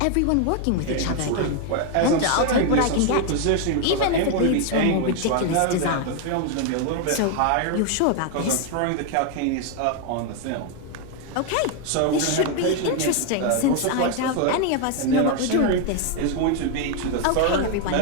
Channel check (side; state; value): both; different; correlation 0.01